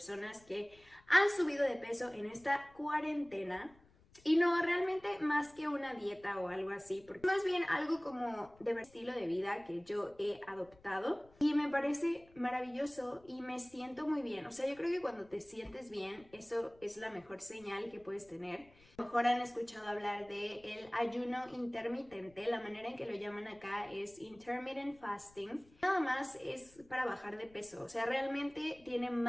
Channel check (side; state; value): left; noise; rumble, 28 dB below the sound